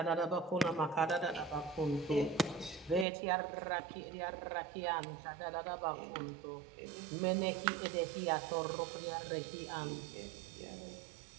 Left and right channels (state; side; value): drops out; left; at 3.1 s